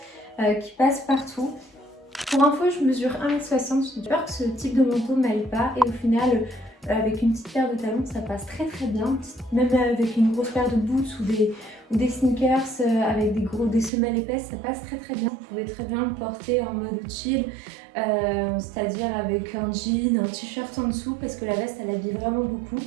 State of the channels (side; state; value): left; drops out; at 13.9 s